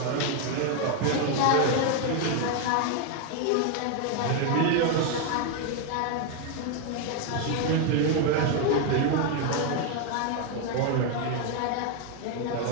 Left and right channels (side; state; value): both; different; correlation 0.01